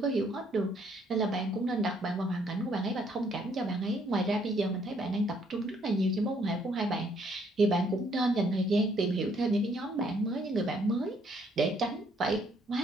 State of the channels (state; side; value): normal; both; correlation 0.67